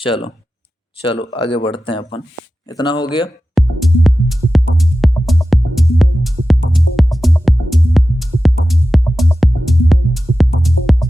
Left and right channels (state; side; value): normal; both; correlation 0.94